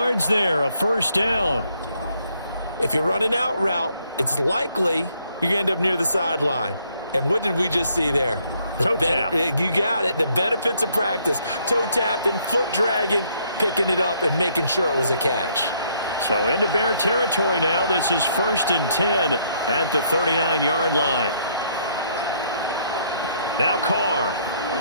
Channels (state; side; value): inverted; both; correlation -0.68